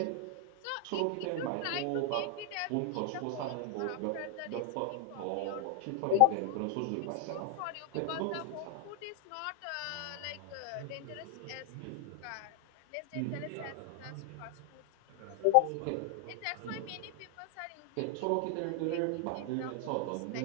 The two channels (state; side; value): different; both; correlation 0.00